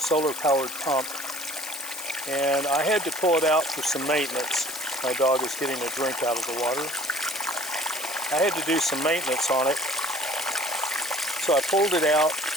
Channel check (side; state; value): left; noise; hiss, 9 dB below the sound